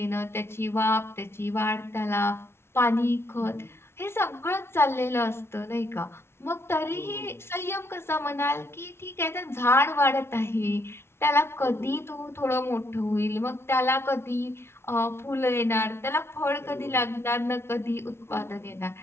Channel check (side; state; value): right; late; 0.12 ms